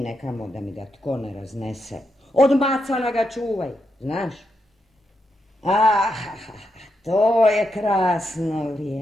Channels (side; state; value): both; normal; correlation 0.83